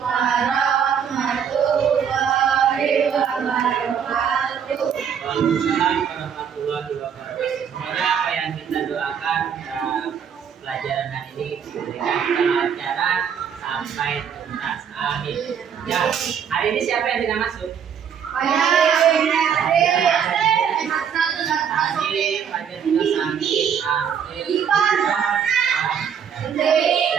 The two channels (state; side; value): quieter; left; 7.7 dB